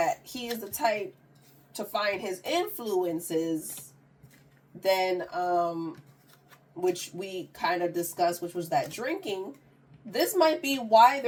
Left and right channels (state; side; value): identical; both; correlation 1.00